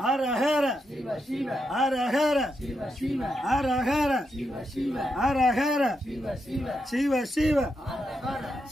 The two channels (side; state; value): both; normal; correlation 0.84